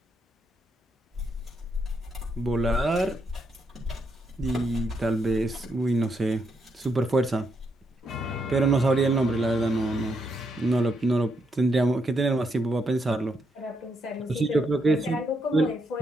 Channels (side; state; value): both; normal; correlation 0.78